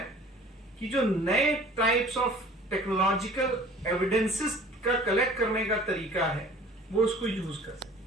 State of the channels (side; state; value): both; normal; correlation 0.48